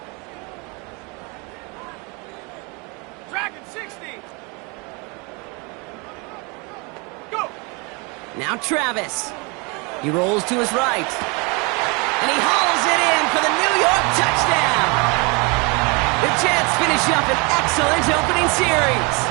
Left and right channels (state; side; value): quieter; left; 29.8 dB